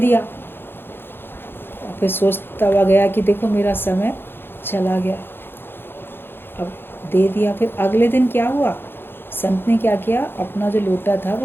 और फिर सोचता हुआ गया कि देखो मेरा समय चला गया। अब दे दिया। फिर अगले दिन क्या हुआ, संत ने क्या किया, अपना जो लोटा था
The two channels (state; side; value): late; right; 0.10 ms